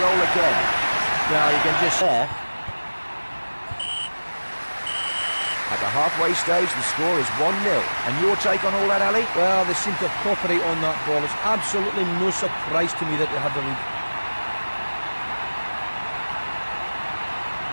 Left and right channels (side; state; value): both; inverted; correlation -1.00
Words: again. Well, you can just... There. At the halfway stage, the score is 1-0. And your take on all that, Ali? Well, they seem to cooperate on that ball. It's absolutely no surprise to me that they have the